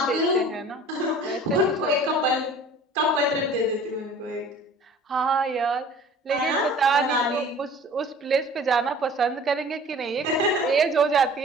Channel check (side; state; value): both; normal; correlation 0.46